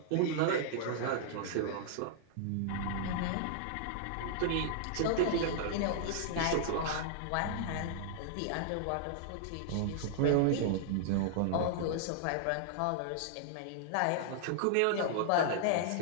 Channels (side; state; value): both; different; correlation -0.01